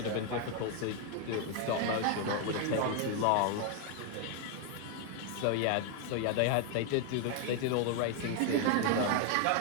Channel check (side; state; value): both; different; correlation 0.00